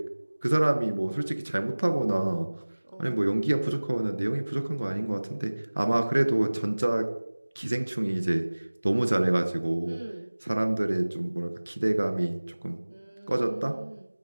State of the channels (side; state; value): both; inverted; correlation -1.00